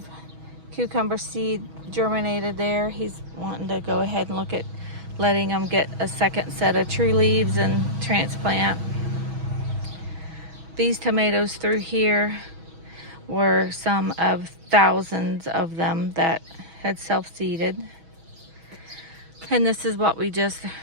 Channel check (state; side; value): late; left; 6.2 ms